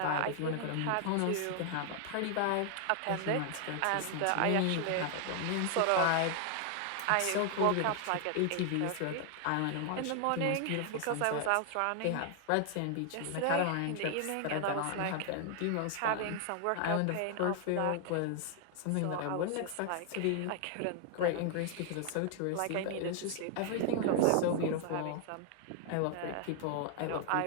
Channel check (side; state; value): both; different; correlation 0.00